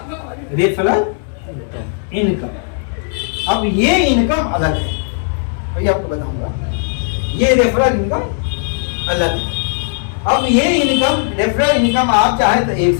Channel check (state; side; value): silent; right; digital silence